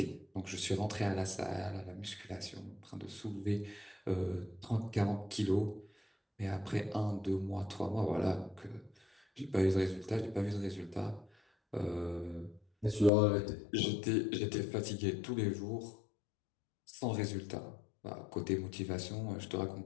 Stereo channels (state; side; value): drops out; right; at 13.1 s